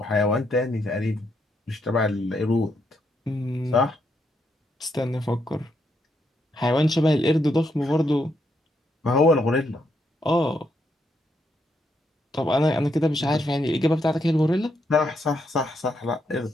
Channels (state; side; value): normal; both; correlation 0.78